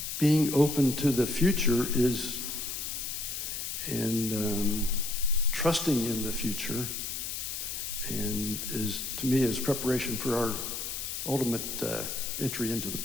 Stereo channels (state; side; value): noise; left; hiss, 4 dB below the sound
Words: being open to the future is, and trusting in the future, and is, to me, is preparation for our ultimate entry into the